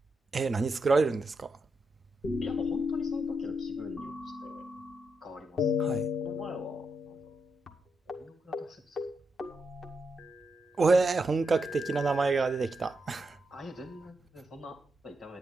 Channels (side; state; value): both; normal; correlation 0.84